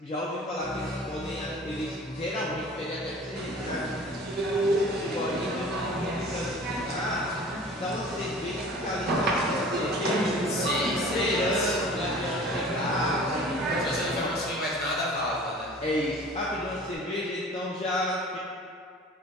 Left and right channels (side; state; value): both; normal; correlation 0.44